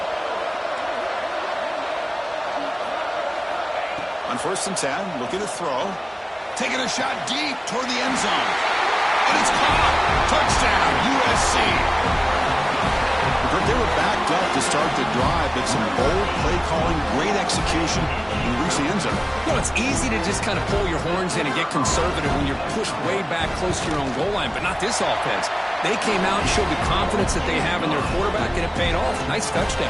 On 1st and 10, looking to throw. Taking a shot deep toward the end zone. And it's caught. Touchdown, USC. They were backed up to start the drive, but some bold play calling, great execution, and reach the end zone. You know, it's easy to just kind of pull your horns in and get conservative when you're pushed way back close to your own goal line, but not this offense. They came out and showed the confidence that they have in their quarterback, and it paid off. Nice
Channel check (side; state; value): both; identical; correlation 1.00